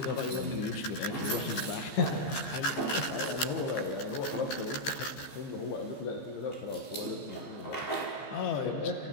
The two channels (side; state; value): right; late; 15 ms